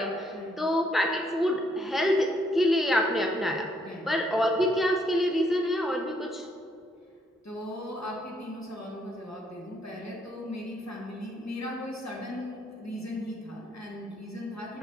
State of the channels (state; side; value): normal; both; correlation 0.71